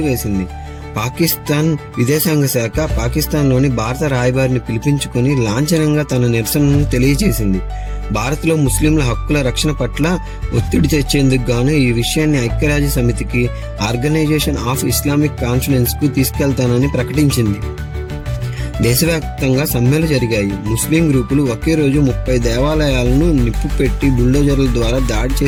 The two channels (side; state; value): both; identical; correlation 1.00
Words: పాకిస్తాన్ విదేశాంగ శాఖ పాకిస్తాన్లోని భారత రాయబారిని పిలిపించుకుని లాంఛనంగా తన నిరసనను తెలియజేసింది. భారత్లో ముస్లింల హక్కుల రక్షణ పట్ల ఒత్తిడి తెచ్చేందుకు గాను ఈ విషయాన్ని ఐక్యరాజ్య సమితికి, ఆర్గనైజేషన్ ఆఫ్ ఇస్లామిక్ కాన్ఫరెన్స్ కు తీసుకెళ్తానని ప్రకటించింది. దేశవ్యాప్తంగా సమ్మెలు జరిగాయి. ముస్లిం గ్రూపులు ఒకే రోజు 30 దేవాలయాలను నిప్పు పెట్టి బుల్డోజర్ల ద్వారా దాడి